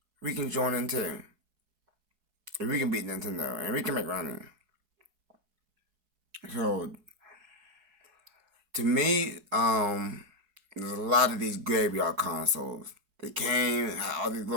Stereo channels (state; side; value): late; left; 4.7 ms